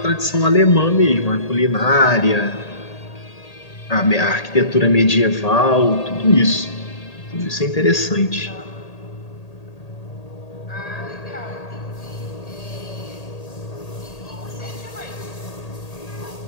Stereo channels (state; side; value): late; right; 1.8 ms